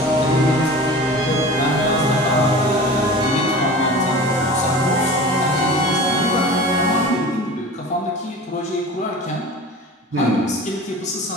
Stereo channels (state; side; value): normal; both; correlation 0.36